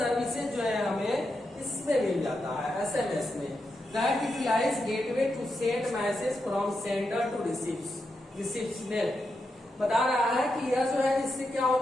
जो है हमें इसमें मिल जाता है एसएमएस में। That utilise gateway to send message from sender to recipient. बता रहा है कि यह जो है इससे क्या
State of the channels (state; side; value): normal; both; correlation 0.85